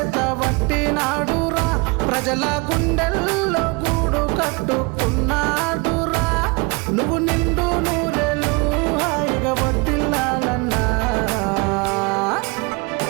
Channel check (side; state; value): left; quieter; 28.6 dB